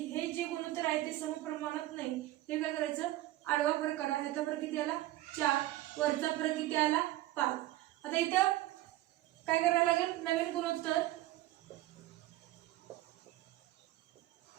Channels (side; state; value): left; quieter; 16.0 dB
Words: जे गुणोत्तर आहे ते समप्रमाणात नाही. ते काय करायचं, आडवा फरक काढा, यातला फरक किती आला 4, वरचा फरक किती आला 5. आता इथं काय करायला लागेल, नवीन गुणोत्तर.